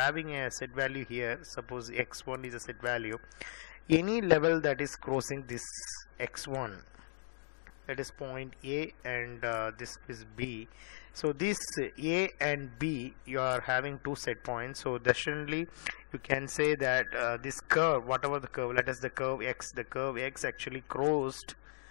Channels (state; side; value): silent; right; digital silence